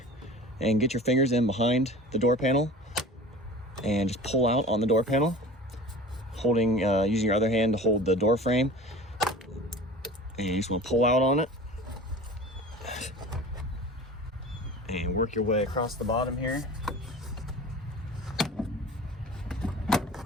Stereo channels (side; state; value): both; normal; correlation 0.38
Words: and get your fingers in behind the door panel and just pull out on the door panel, holding using your other hand to hold the door frame. And you just want to pull out on it and work your way across the bottom here.